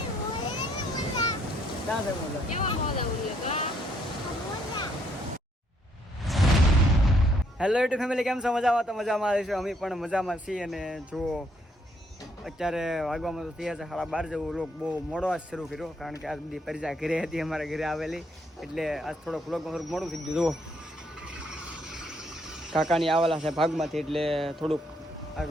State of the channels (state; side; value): normal; both; correlation 0.70